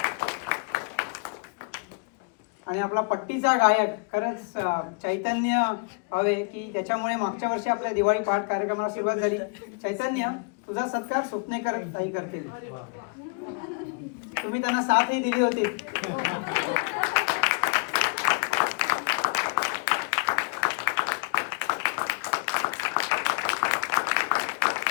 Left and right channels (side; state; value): right; quieter; 34.4 dB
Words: आणि आपला पट्टीचा गायक, खरंच चैतन्य हवे की ज्याच्यामुळे मागच्या वर्षी आपल्या दिवाळी पहाट कार्यक्रमाला सुरुवात झाली. चैतन्य, तुझा सत्कार सुपनेकर ताई करतील. तुम्ही त्यांना साथही दिली होती.